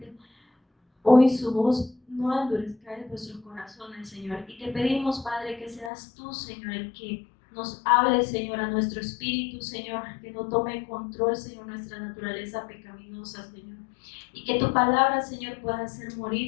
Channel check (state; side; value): drops out; right; at 5.9 s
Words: hoy su voz, no endurezcáis vuestros corazones, Señor. Y te pedimos, Padre, que seas tú, Señor, el que nos hable, Señor, a nuestro espíritu, Señor, que no tome control, Señor, nuestra naturaleza pecaminosa, Señor. Y que tu palabra, Señor, pueda hacer